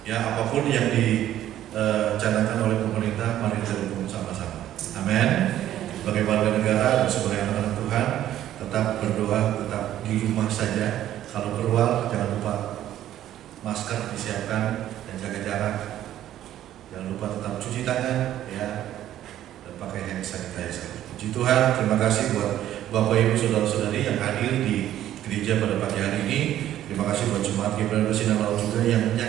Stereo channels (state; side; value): quieter; left; 12.3 dB